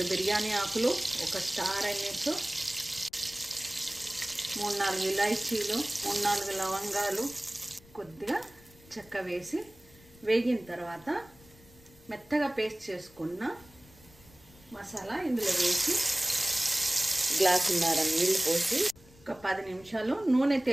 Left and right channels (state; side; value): noise; left; rumble, 25 dB below the sound